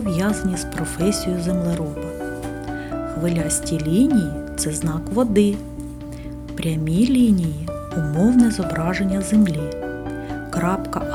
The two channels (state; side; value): identical; both; correlation 1.00